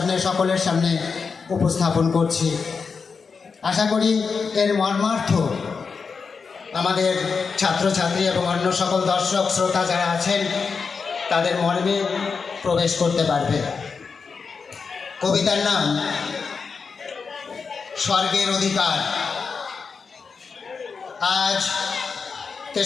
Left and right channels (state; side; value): quieter; right; 5.2 dB